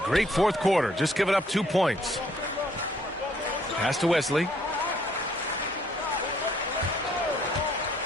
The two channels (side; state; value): both; normal; correlation 0.64